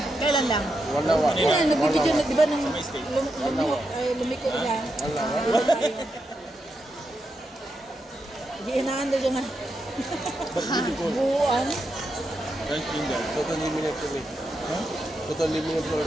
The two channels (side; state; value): both; normal; correlation 0.85